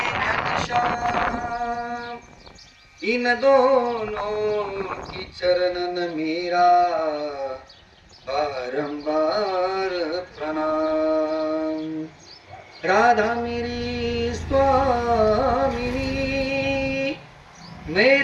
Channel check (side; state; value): both; identical; correlation 1.00